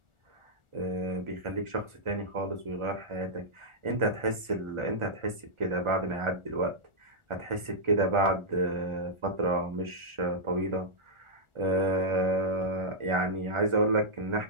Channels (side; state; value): left; late; 1.4 ms